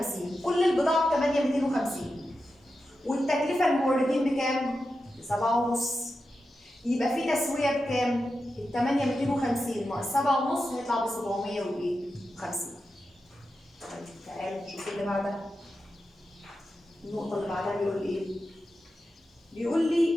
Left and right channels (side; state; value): both; normal; correlation 0.90